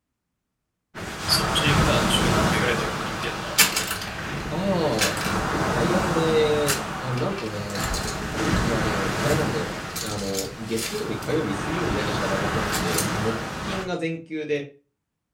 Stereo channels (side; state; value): both; identical; correlation 1.00